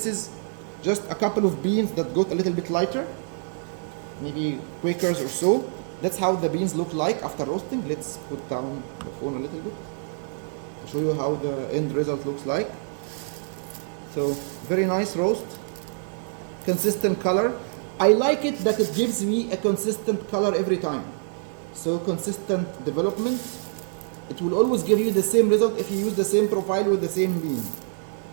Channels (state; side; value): silent; left; digital silence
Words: is just a couple of beans that got a little bit lighter, maybe Quakers or so. That's how the beans look like after roasting. Let's put down the phone a little bit to show you how the end result looks like. So very nice roast, consistent color. I like it that it gives me a consistent color every time. So consistent development. It will always give you the same result if you use the same profile with the same bean.